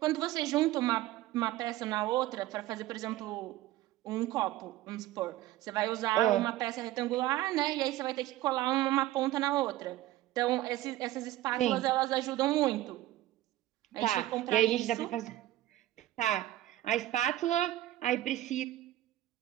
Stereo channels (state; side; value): quieter; left; 15.2 dB